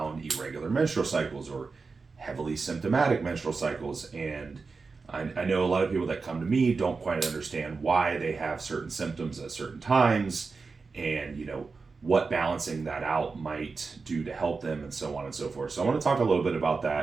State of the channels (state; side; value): quieter; left; 4.5 dB